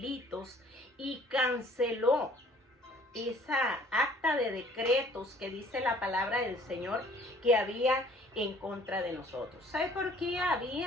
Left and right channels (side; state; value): both; normal; correlation 0.55